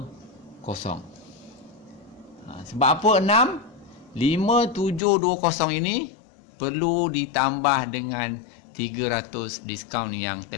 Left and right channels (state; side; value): drops out; right; at 5.0 s